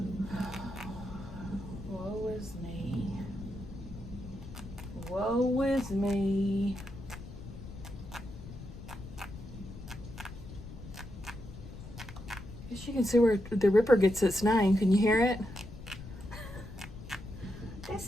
Woe is me. Woe is me. Guess you can see where the Ripper gets its name. Can you hear it?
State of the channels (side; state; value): left; noise; rumble, 13 dB below the sound